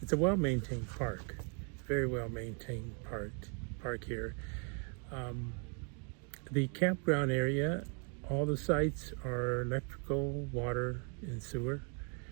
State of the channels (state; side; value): quieter; left; 39.1 dB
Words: a well-maintained park, very well-maintained park here. The campground area, all the sites are electrical, water, and sewer.